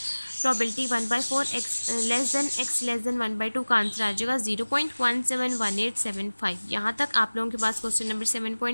प्रोबेबिलिटी 1/4 एक्स लेस देन 1/2 का आंसर आ जाएगा 0.171875। यहाँ तक आप लोगों के पास क्वेश्चन नंबर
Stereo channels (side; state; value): both; inverted; correlation -1.00